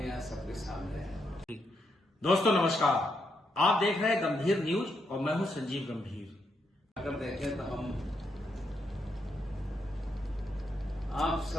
यहाँ सबके सामने है। दोस्तों नमस्कार, आप देख रहे हैं गंभीर न्यूज और मैं हूं संजीव गंभीर। अगर देखें तो हम आप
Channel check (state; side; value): normal; both; correlation 0.80